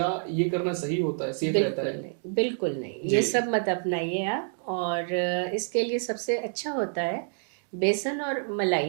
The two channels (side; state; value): left; silent; digital silence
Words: ये करना सही होता है, सेफ रहता बिल्कुल है? नहीं, बिल्कुल नहीं, जी। ये सब मत अपनाइए आप। और इसके लिए सबसे अच्छा होता है बेसन और